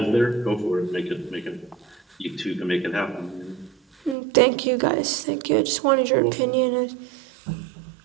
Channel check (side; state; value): left; drops out; at 4.2 s